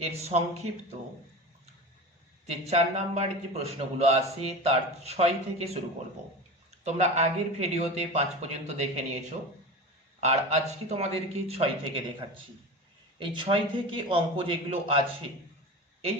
এর সংক্ষিপ্ত যে 4 নাম্বারের যে প্রশ্নগুলো আছে তার 6 থেকে শুরু করব। তোমরা আগের ভিডিওতে 5 পর্যন্ত দেখে নিয়েছো, আর আজকে তোমাদেরকে 6 থেকে দেখাচ্ছি। এই 6 থেকে অঙ্ক যেগুলো আছে, এই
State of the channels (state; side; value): normal; both; correlation 0.29